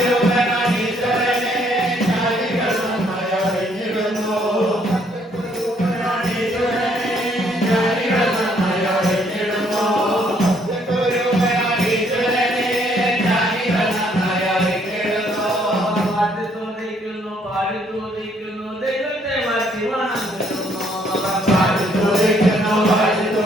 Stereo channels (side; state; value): both; normal; correlation 0.67